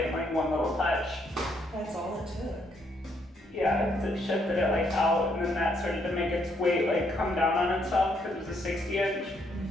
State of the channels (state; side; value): normal; both; correlation 0.72